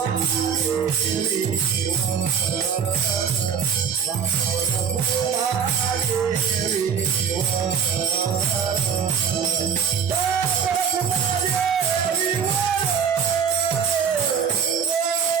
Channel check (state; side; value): quieter; left; 7.1 dB